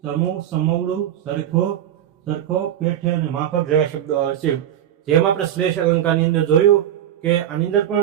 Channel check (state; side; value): quieter; left; 11.1 dB